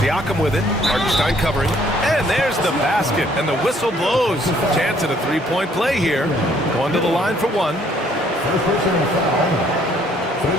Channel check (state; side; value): normal; both; correlation 0.63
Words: with it. Hartenstein covering. And there's the basket. And the whistle blows. Chance at a three-point play here. Going to the line for one.